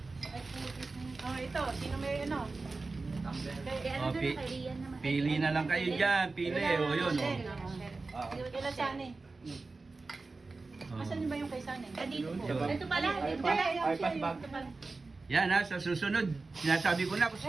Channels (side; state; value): left; quieter; 3.7 dB